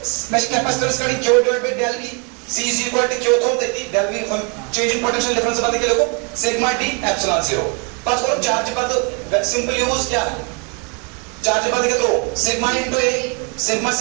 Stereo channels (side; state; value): left; quieter; 34.9 dB